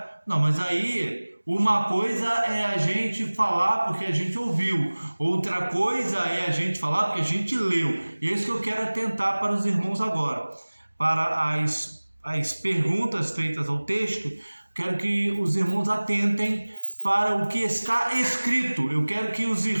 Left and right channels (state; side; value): inverted; both; correlation -1.00